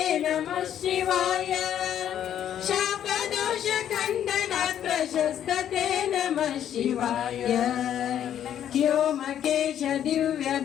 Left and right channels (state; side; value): quieter; right; 10.2 dB